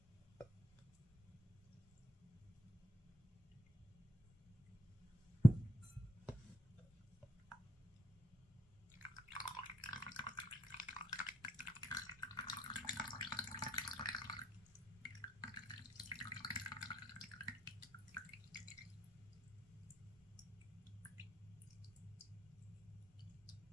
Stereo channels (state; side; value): normal; both; correlation 0.77